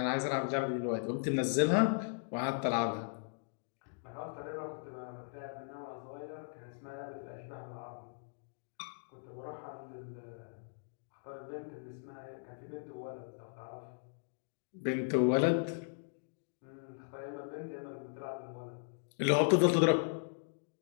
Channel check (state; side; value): silent; right; digital silence